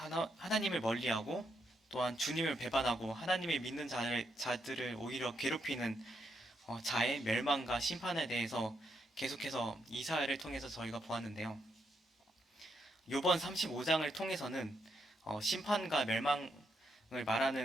멀리하고 또한 주님을 배반하고 하나님을 믿는 자들을 오히려 괴롭히는 자의 멸망과 심판에 대해서 계속해서 이사야를 통해서 저희가 보았는데요. 이번 35장을 통해서는 심판과 멸망을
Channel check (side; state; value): both; normal; correlation 0.79